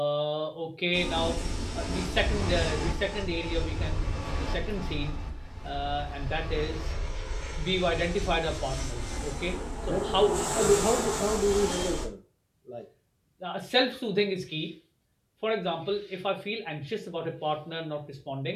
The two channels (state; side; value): identical; both; correlation 1.00